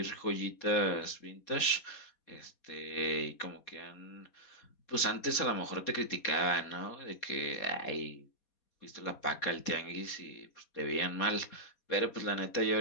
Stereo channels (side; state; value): right; late; 4.2 ms